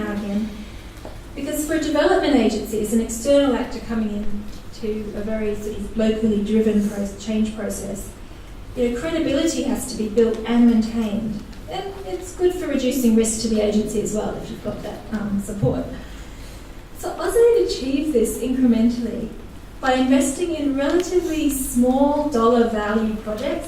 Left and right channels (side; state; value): both; identical; correlation 1.00